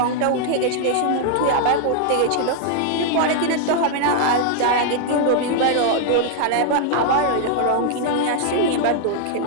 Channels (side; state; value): both; different; correlation -0.01